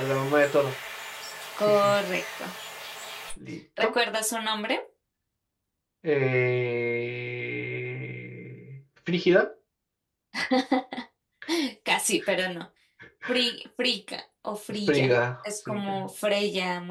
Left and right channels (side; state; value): both; identical; correlation 1.00